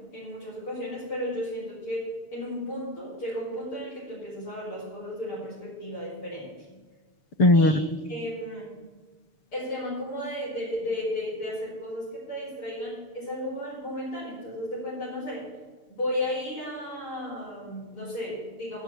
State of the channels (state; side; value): late; right; 6.7 ms